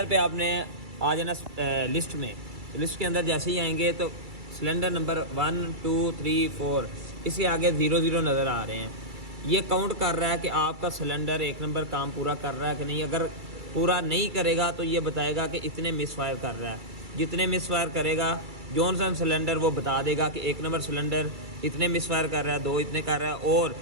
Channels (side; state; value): left; late; 2.3 ms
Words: पे आपने आ जाना लिस्ट में, लिस्ट के अंदर जैसे ही आएंगे तो सिलेंडर नंबर 1 2 3 4 इसके आगे 00 नज़र आ रहे हैं। ये काउंट कर रहा है कि आपका सिलेंडर 1 नंबर काम पूरा कर रहा है कि नहीं। अगर पूरा नहीं करेगा तो ये बताएगा कि इतने मिस फायर कर रहा है। जितने मिस फायर करेगा जॉनसन सिलेंडर वो बता देगा कि 1 नंबर सिलेंडर इतने मिस फायर कर रहा है, 2 इतने कर रहा है, और